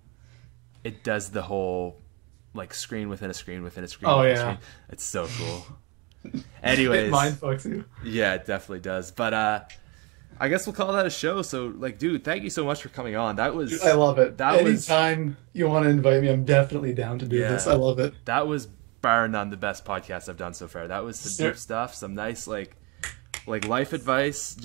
does the whole like screen within a screen within a screen. Oh, within a yeah. screen. It's so cool. Anyways, It mind fucks you. yeah, it definitely does. But I guess we'll call that a show. So like, dude, thank you so much for coming on. That was Dude, I love it. That was Anytime you want to invite me, I'm definitely down to do this. I love it. That was bar none the best podcast I've done so far. That was some deep stuff, some nice like life advice,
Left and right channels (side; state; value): left; quieter; 27.8 dB